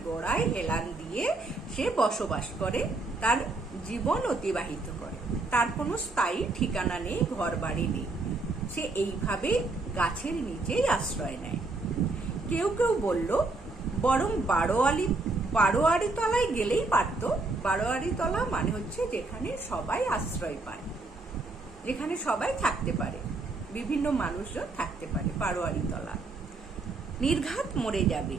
গোড়ায় হেলান দিয়ে সে বসবাস করে, তার জীবন অতিবাহিত করে। তার কোনো স্থায়ী ঠিকানা নেই, ঘর বাড়ি নেই, সে এইভাবে গাছের নিচেই আশ্রয় নেয়। কেউ কেউ বলল, বরং বারোয়ারি তলায় গেলেই পারত। বারোয়ারি তলা মানে হচ্ছে যেখানে সবাই আশ্রয় পায়, যেখানে সবাই থাকতে পারে, বিভিন্ন মানুষজন থাকতে পারে, বারোয়ারি তলা। নির্ঘাত মরে যাবে,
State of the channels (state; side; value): quieter; left; 3.4 dB